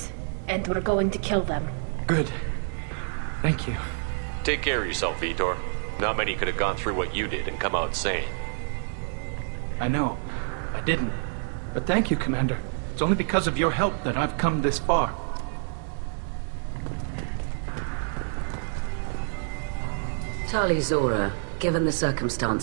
and we're going to kill them. Good. Thank you. Take care of yourself, Vitor. Not many could have gone through what you did and come out sane. I know. I didn't. But thank you, Commander. It's only because of your help that I've come this far. Tali Zora, given the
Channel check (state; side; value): silent; left; digital silence